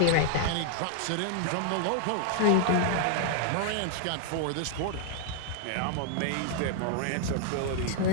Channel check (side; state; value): both; different; correlation 0.00